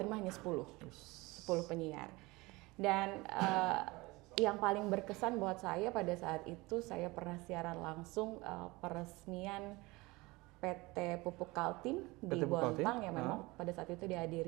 hanya 10 penyiar. Dan yang paling berkesan buat saya pada saat itu, saya pernah siaran langsung peresmian PT Pupuk Kaltim di Bontang yang memang pada saat itu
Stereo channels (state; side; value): quieter; left; 22.7 dB